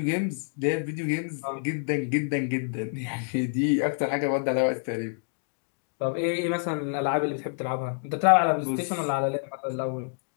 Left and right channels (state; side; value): silent; right; digital silence